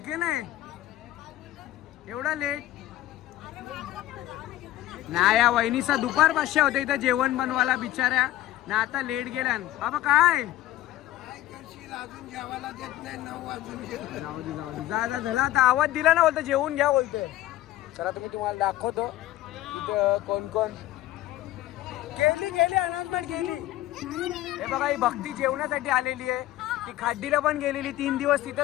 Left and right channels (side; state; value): right; quieter; 14.8 dB